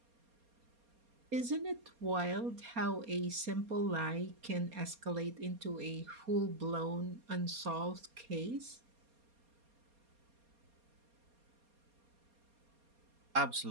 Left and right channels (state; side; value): late; left; 4.2 ms